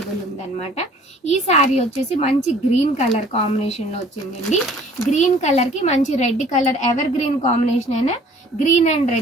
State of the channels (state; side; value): normal; both; correlation 0.53